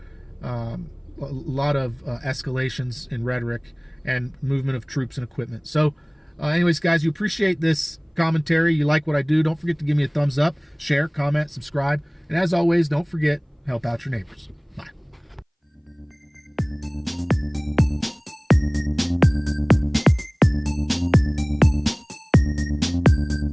A lot of escalations in rhetoric and movement of troops and equipment. So anyways, guys, you appreciate this commentary, you like what I do, don't forget to give me a thumbs up, share, comment, subscribe, and as always, don't forget, help out your neighbors.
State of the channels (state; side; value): identical; both; correlation 1.00